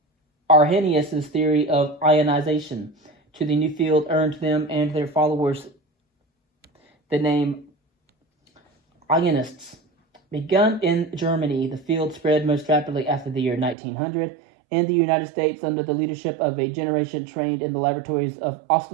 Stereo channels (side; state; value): left; drops out; at 13.8 s